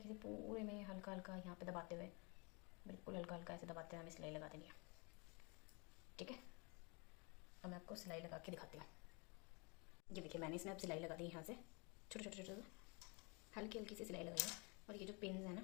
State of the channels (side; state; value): right; quieter; 31.1 dB